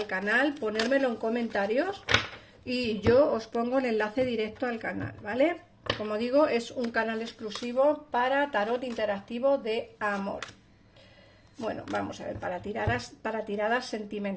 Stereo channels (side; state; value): both; identical; correlation 1.00